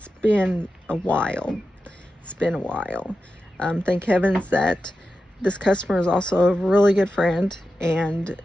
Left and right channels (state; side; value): normal; both; correlation 0.91